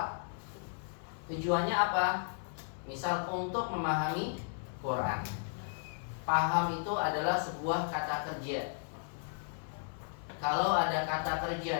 Tujuannya apa? Misal untuk memahami Quran. Paham itu adalah sebuah kata kerja. Kalau ada kata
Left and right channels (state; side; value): silent; right; 55 dB below the other